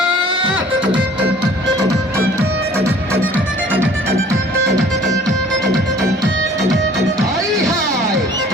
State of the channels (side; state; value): both; normal; correlation 0.51